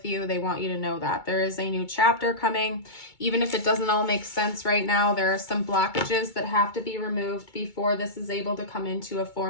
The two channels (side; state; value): right; late; 2.2 ms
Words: you. They want you to know that there is a new chapter coming. Even if it doesn't all make sense right now, there are some blockages that have to be removed before this is able to come into a